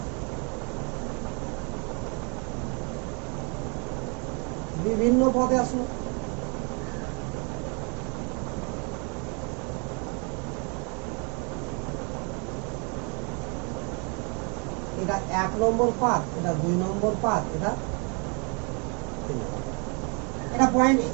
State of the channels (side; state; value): left; quieter; 34.4 dB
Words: বিভিন্ন পদে আসলো। এটা 1 নম্বর পাথ, এটা 2 নম্বর পাথ, এটা পয়েন্ট।